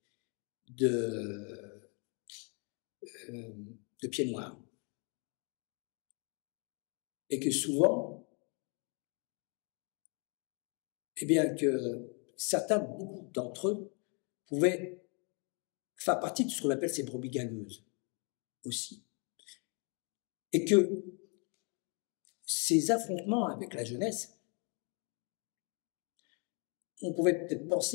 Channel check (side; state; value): right; quieter; 35.9 dB